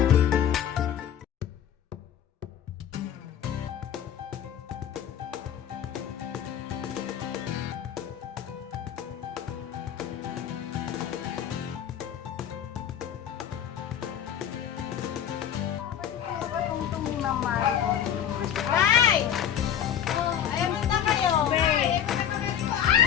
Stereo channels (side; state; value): right; quieter; 9.6 dB